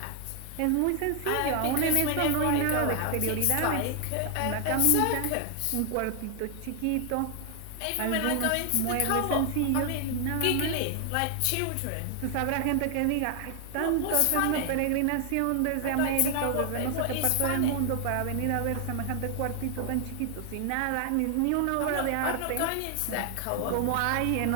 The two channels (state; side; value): different; both; correlation 0.00